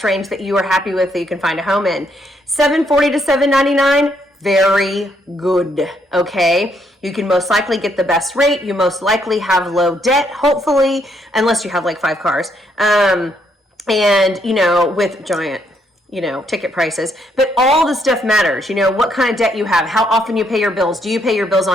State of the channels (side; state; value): both; normal; correlation 0.73